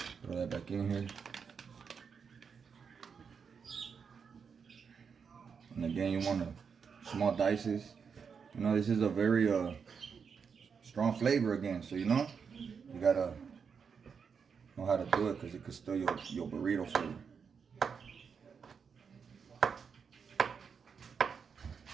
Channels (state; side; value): quieter; left; 6.2 dB